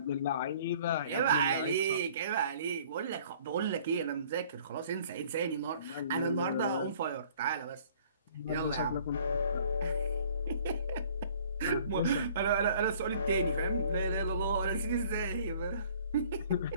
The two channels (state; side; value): inverted; both; correlation -0.54